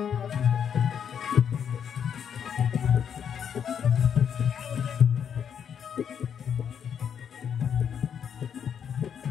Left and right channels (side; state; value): right; quieter; 8.0 dB